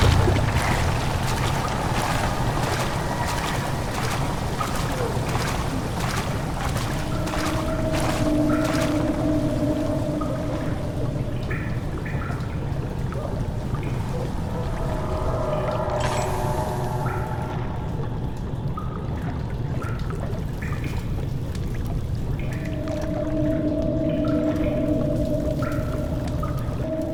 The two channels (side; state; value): both; identical; correlation 1.00